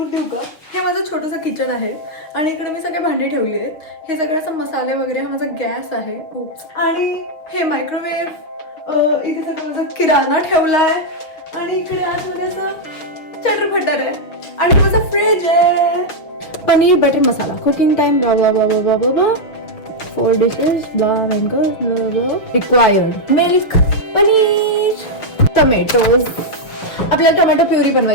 देऊ का. हे माझं छोटंसं किचन आहे आणि इकडे मी सगळे भांडी ठेवली आहेत. हे सगळं असं मसाले वगैरे, हा माझा गॅस आहे आणि हे मायक्रोवेव्ह, इथे सगळं माझा किराणा ठेवलाय आणि इकडे आतमध्ये असं चटरफटर आहे आणि माझा फ्रीज आहे. Paneer butter masala, cooking time blah blah blah blah blah blah, 4 dishes blah blah, required milk, paneer, tomatoes. आपल्याला टोमॅटो प्युरी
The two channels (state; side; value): late; right; 6.1 ms